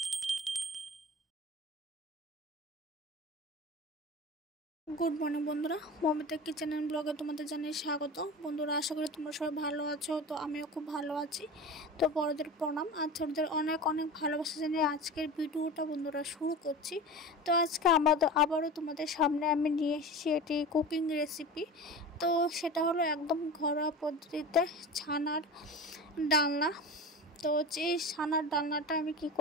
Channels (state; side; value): normal; both; correlation 0.32